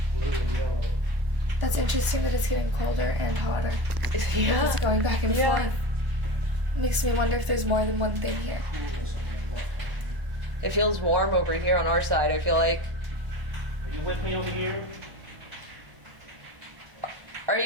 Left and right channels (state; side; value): late; left; 1.0 ms